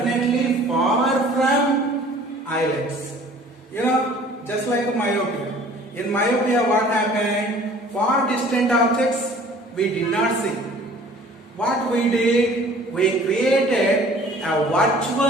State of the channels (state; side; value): normal; both; correlation 0.50